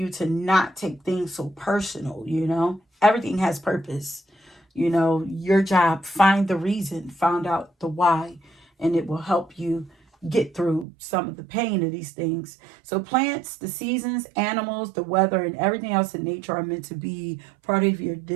to not take things so personal. You know, everything has purpose. You know, your job, find the reason, find out the why, and it will help you get through some of the pain of these things. So plants, the seasons, animals, the weather, and everything else in nature are meant to be part of your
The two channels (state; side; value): drops out; left; at 10.9 s